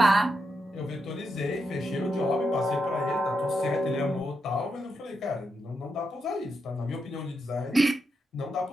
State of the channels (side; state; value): both; normal; correlation 0.83